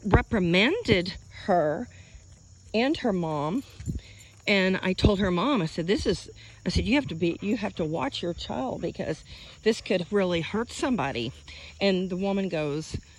reprimanded her and her mom. And I told her mom, I said, you have to watch your child, because this could really hurt somebody. And the woman goes,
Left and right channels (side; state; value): both; identical; correlation 1.00